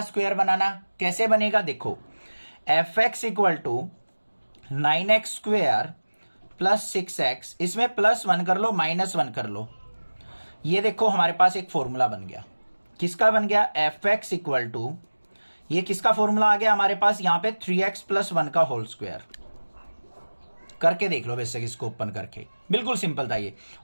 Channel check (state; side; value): inverted; both; correlation -1.00